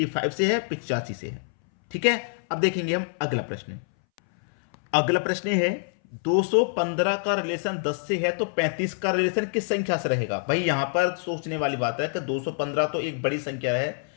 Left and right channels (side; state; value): right; silent; 61 dB below the other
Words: से है, 85 से है। ठीक है, अब देखेंगे हम अगला प्रश्न। अगला प्रश्न है 215 का रिलेशन 10 से है तो 35 का रिलेशन किस संख्या से रहेगा। भाई यहां पर सोचने वाली बात है कि 215 तो एक बड़ी संख्या है,